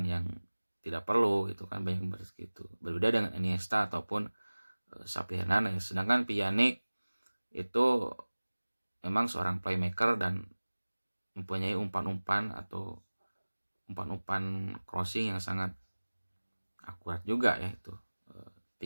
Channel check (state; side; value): inverted; both; correlation -1.00